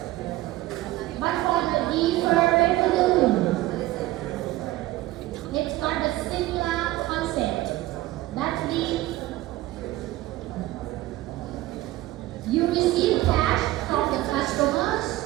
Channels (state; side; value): quieter; left; 16.9 dB